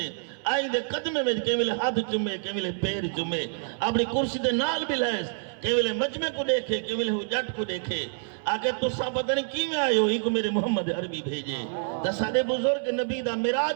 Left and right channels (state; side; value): silent; left; 60 dB below the other